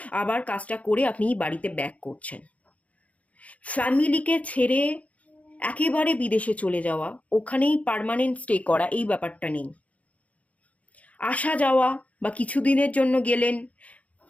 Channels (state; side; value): late; right; 0.067 ms